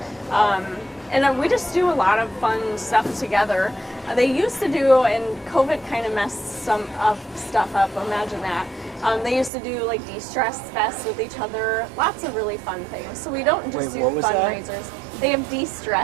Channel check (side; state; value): left; drops out; at 9.5 s